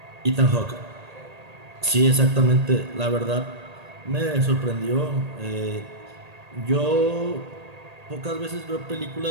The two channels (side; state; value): left; late; 1.8 ms